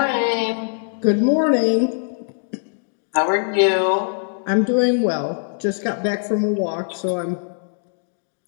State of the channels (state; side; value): silent; right; digital silence